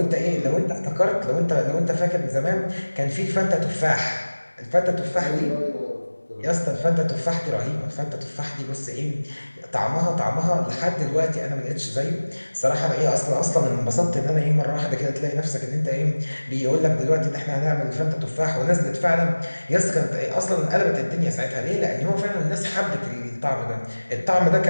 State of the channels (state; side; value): inverted; both; correlation -1.00